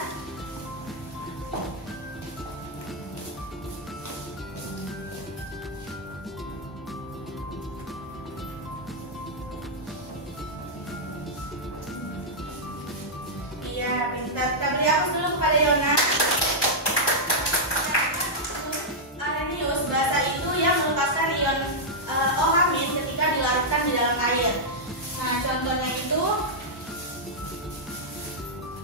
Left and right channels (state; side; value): normal; both; correlation -0.06